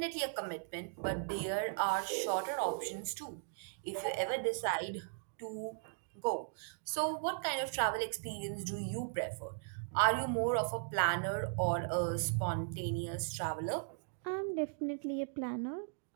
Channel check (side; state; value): left; silent; digital silence